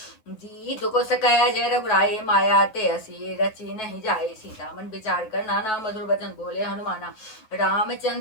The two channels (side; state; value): right; late; 9.3 ms